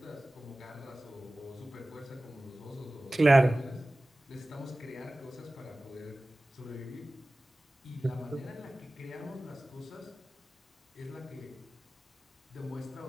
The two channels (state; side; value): normal; both; correlation 0.97